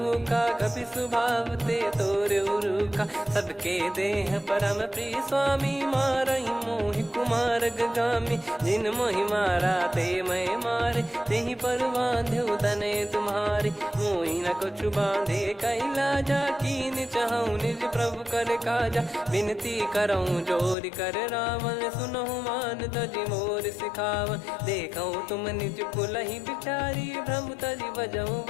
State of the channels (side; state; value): right; drops out; at 20.8 s